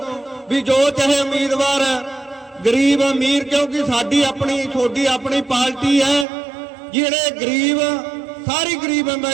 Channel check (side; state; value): left; drops out; at 6.2 s